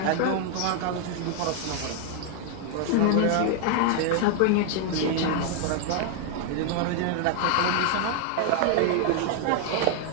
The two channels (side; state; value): both; different; correlation 0.00